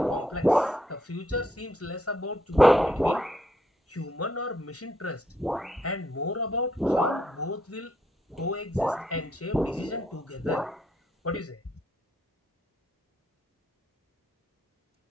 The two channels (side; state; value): both; normal; correlation 0.74